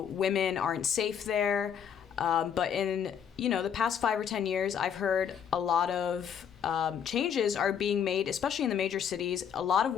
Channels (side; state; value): right; quieter; 8.1 dB